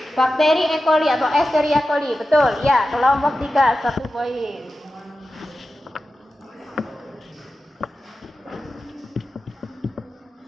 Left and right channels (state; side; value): normal; both; correlation 0.92